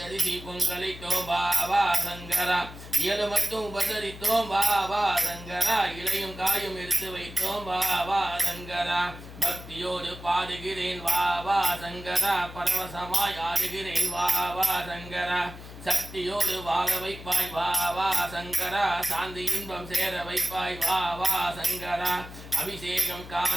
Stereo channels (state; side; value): noise; left; hum, 14 dB below the sound